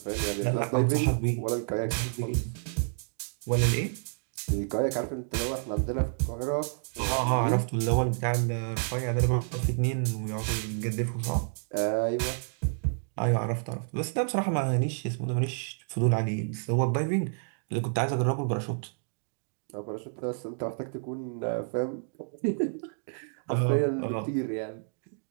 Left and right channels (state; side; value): silent; left; digital silence